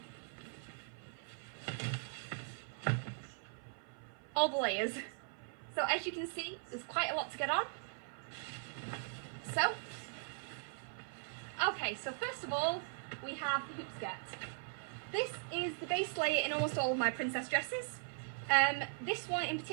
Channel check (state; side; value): silent; left; 51 dB below the other